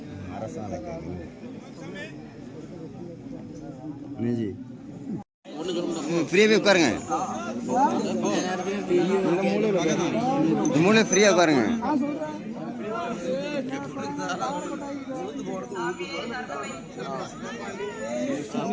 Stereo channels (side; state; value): both; identical; correlation 1.00